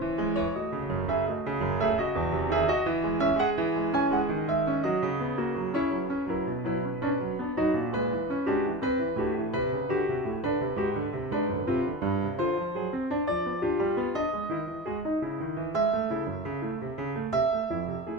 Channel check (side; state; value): both; normal; correlation 0.30